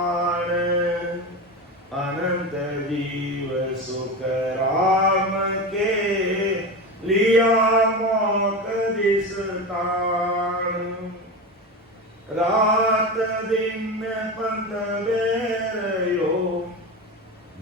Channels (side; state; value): both; normal; correlation 0.22